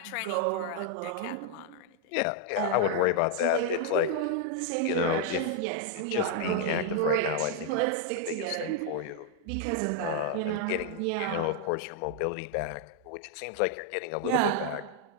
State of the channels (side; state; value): both; different; correlation 0.00